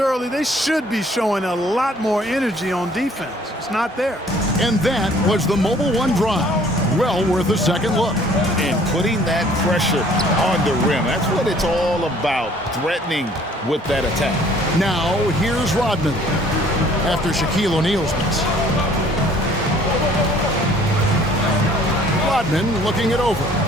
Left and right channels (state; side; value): normal; both; correlation 0.56